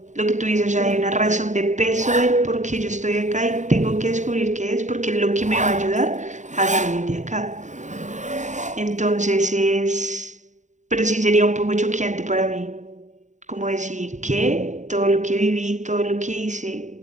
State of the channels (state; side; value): late; left; 0.35 ms